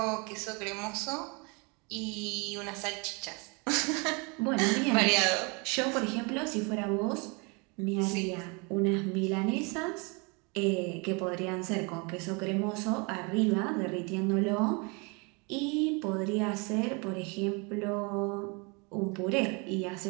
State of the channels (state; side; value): quieter; left; 30.9 dB